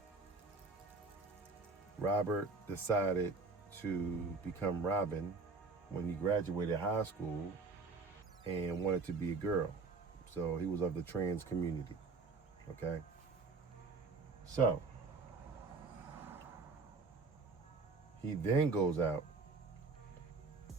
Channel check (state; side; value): quieter; left; 4.1 dB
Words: Robert decided to become Robin when he graduated high school and wanted to be a girl. So he was of the trans community, okay? So he then goes out